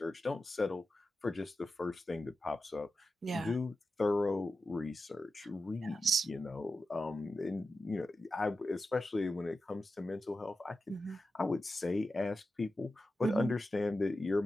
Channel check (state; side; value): normal; both; correlation 0.91